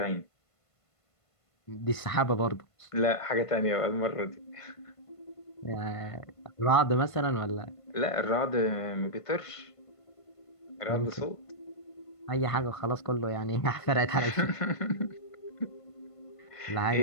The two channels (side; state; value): right; late; 1.5 ms